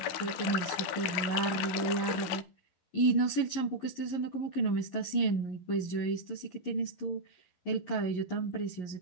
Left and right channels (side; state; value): right; late; 12 ms